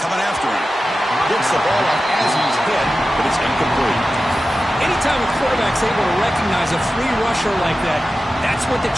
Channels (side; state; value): both; normal; correlation 0.94